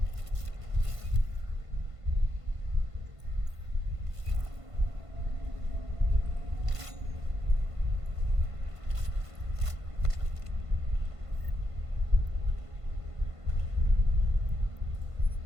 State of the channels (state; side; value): late; left; 1.5 ms